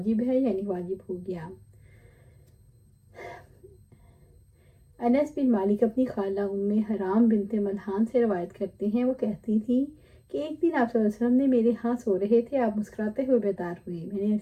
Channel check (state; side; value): identical; both; correlation 1.00